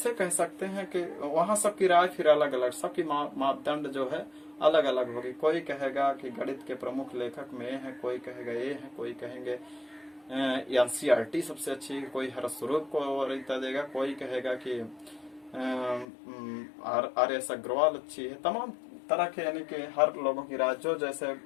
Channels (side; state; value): right; drops out; at 16.1 s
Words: कह सकते हैं कि वहाँ सबकी राय फिर अलग अलग, सबकी मापदंड जो है अलग अलग होगी। कोई कहेगा कि गणित के प्रमुख लेखक में ये है, कोई कहेगा ये है, कोई कहेंगे एनसीईआरटी सबसे अच्छी, कोई हरस्वरूप को वरीयता देगा, कोई कहेगा कि आर.एस. अग्रवाल अच्छी है। तमाम तरह के यानी कि हर लोगों की राय जो जैसे